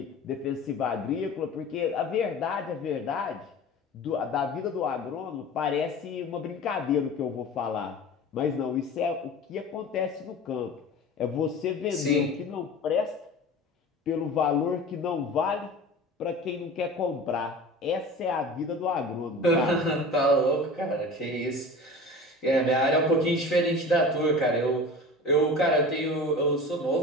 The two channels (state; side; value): normal; both; correlation 0.36